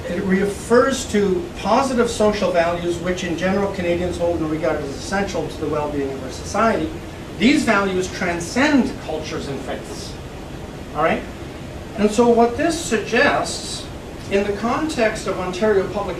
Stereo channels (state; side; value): identical; both; correlation 1.00